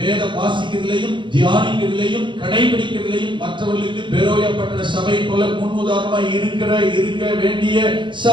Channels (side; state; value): left; late; 0.23 ms